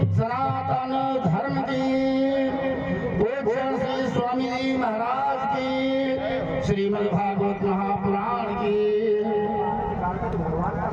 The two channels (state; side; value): identical; both; correlation 1.00